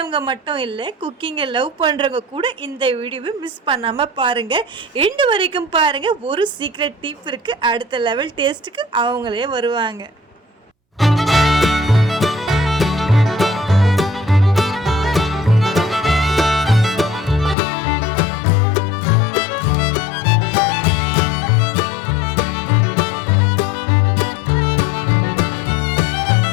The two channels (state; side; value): drops out; right; at 17.6 s